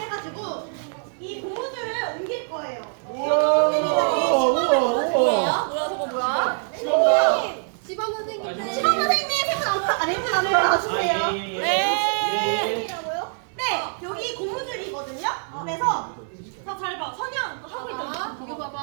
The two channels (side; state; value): left; silent; 62 dB below the other